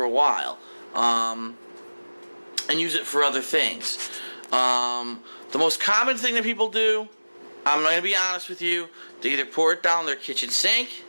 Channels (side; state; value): both; inverted; correlation -1.00